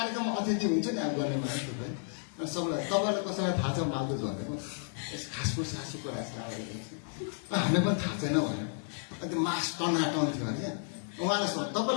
अतिथि हुन्छ नि अब गर्ने मान्छे थुप्रै अनि सबैलाई तपाईँलाई कसैलाई थाहा छ मालजुस भनेको खासफुस सासुको हामीलाई पनि थाहा छैन भनेर अनि त्यो मास टनाटन थियो अरे उहाँलाई सोध्छ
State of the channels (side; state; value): right; silent; digital silence